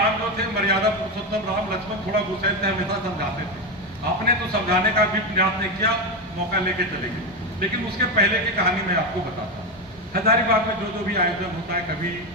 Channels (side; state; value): both; normal; correlation 0.13